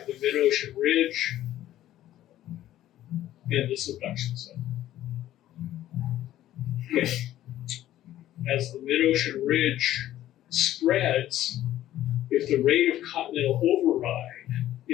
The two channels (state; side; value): quieter; right; 13.4 dB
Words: the mid-ocean ridge and the subduction zone. Okay. As the mid-ocean ridge spreads, if the rate of continental override